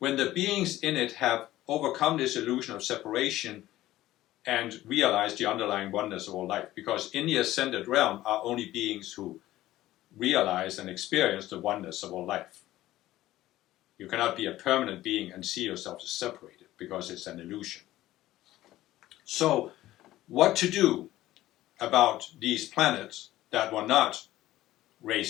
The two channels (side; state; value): right; quieter; 15.4 dB